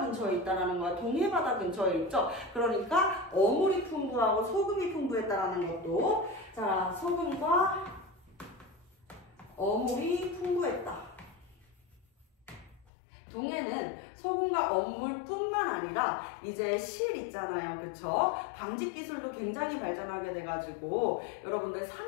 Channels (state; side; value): drops out; right; at 12.9 s